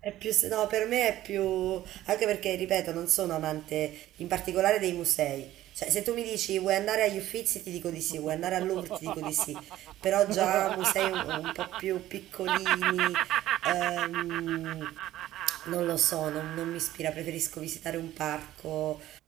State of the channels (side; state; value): left; quieter; 14.2 dB